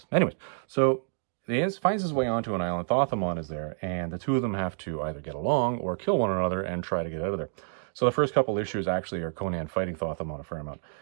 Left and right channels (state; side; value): silent; left; digital silence